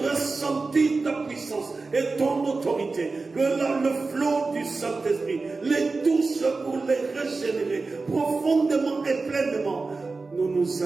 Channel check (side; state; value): left; quieter; 3.9 dB